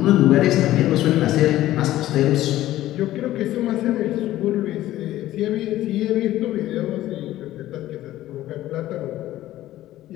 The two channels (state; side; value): quieter; right; 14.6 dB